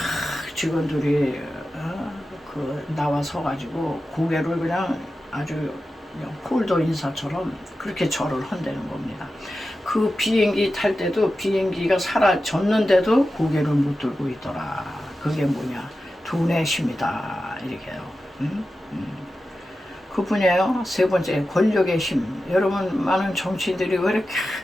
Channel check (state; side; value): normal; both; correlation 0.92